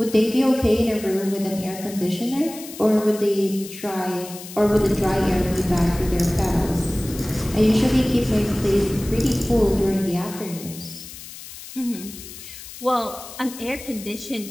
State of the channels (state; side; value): noise; left; hiss, 14 dB below the sound